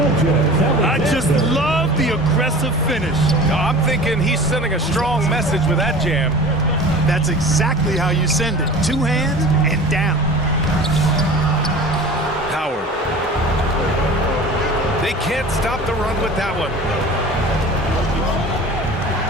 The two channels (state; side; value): normal; both; correlation 0.39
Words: I just love the aggressive finish. I'm thinking he's sending a strong message with that jam. That's exactly how you send it. 2 hands and down. Howard. They can't stop the run with that one.